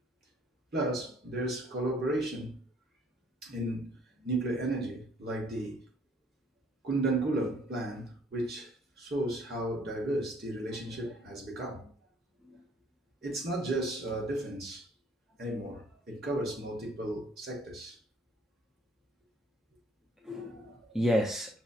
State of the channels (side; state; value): both; normal; correlation 0.61